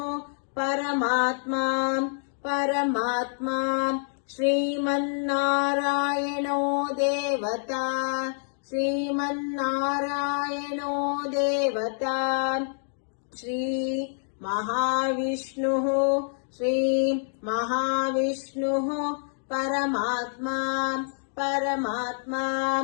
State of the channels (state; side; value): silent; right; digital silence